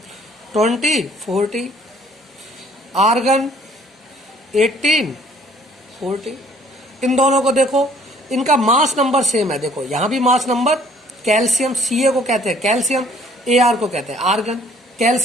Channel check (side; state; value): both; normal; correlation 0.58